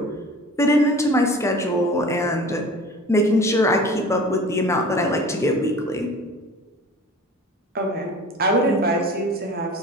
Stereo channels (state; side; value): normal; both; correlation 0.41